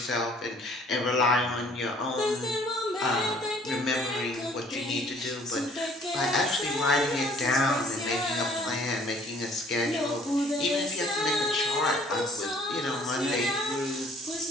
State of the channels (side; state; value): both; normal; correlation 0.56